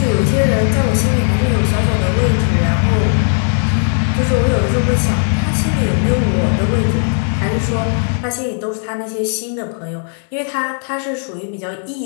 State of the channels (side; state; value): right; silent; 60 dB below the other